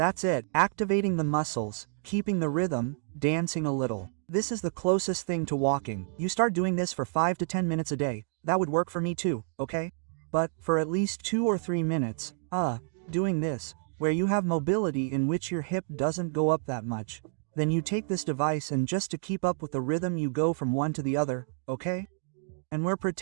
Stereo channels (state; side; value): silent; left; 58 dB below the other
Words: it, activating the muscles, keeping the rhythm, dancing a little. This is the closest thing to walking. You start doing this for 5 to 10 minutes a day. That would work for me too, okay? But, for at least 2 or 3 minutes, doing this, where you have mobility in which your hip doesn't go up that much, then you take this device and just to keep up with the rhythm you go from one to the other, okay? And we're